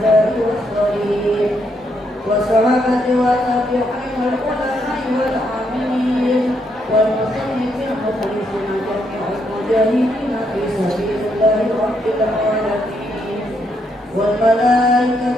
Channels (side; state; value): both; normal; correlation 0.76